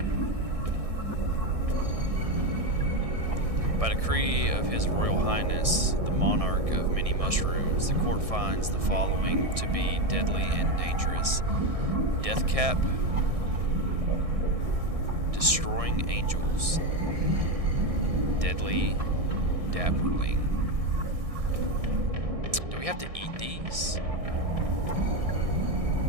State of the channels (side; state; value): left; late; 1.6 ms